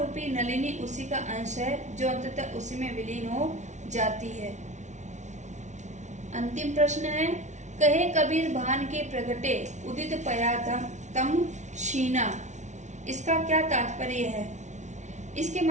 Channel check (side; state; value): left; late; 0.34 ms